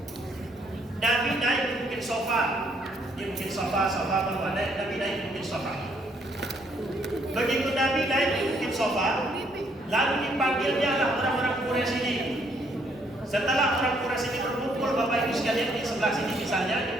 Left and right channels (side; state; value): both; normal; correlation 0.69